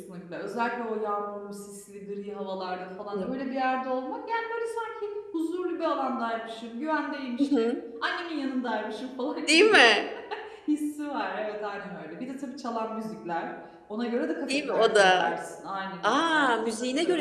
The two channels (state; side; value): identical; both; correlation 1.00